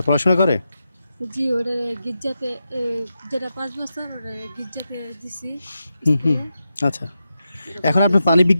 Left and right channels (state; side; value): inverted; both; correlation -0.88